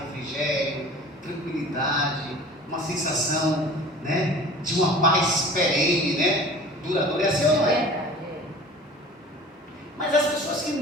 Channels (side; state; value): both; normal; correlation 0.43